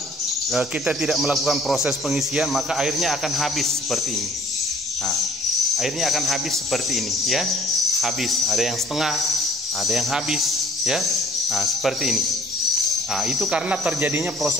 kita tidak melakukan proses pengisian, maka airnya akan habis seperti ini. Nah, airnya akan habis seperti ini ya, habis. Ada yang setengah, ada yang habis ya. Nah, seperti ini. Nah, itu karena terjadinya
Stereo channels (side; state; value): both; normal; correlation 0.56